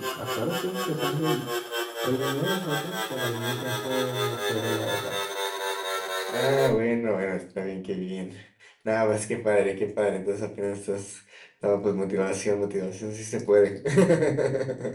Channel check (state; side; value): identical; both; correlation 1.00